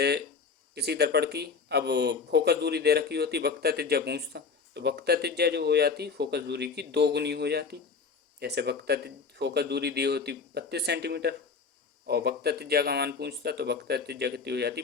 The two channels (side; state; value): right; quieter; 5.1 dB